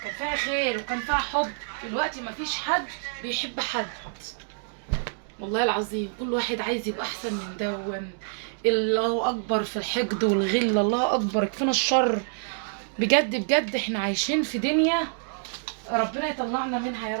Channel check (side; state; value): left; silent; digital silence